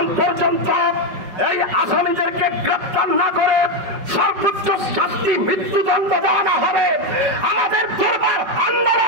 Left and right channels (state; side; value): late; left; 5.3 ms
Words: পর্যন্ত এই আসামিদেরকে গ্রেপ্তার না করে সর্বোচ্চ শাস্তি মৃত্যুদণ্ড দেওয়া না হবে, আমাদের দরবার